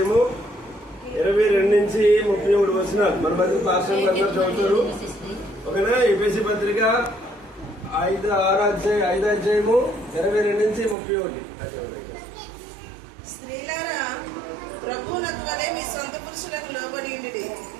22 నుంచి 31 వచనాలు మన మధ్య పాస్టర్లు అందరూ చదువుతారు. ఓకేనా? ఎఫెసీ పత్రిక 5వ అధ్యాయము 22 నుంచి 31. స్త్రీలారా, ప్రభువునకు వలె మీ సొంత పురుషులకు లోబడి ఉండి,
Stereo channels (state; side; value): drops out; left; at 11.0 s